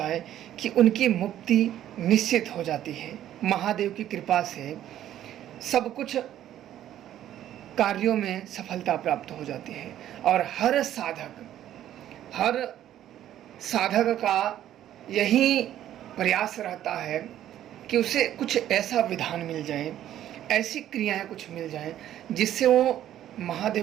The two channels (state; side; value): quieter; left; 11.9 dB